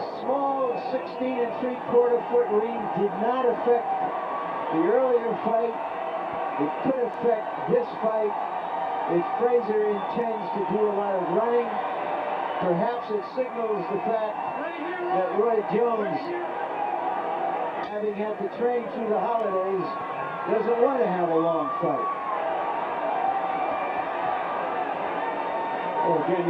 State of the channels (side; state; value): both; identical; correlation 1.00